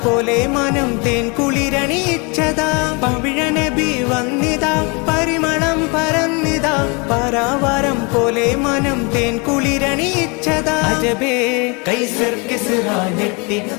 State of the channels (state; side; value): quieter; right; 31.1 dB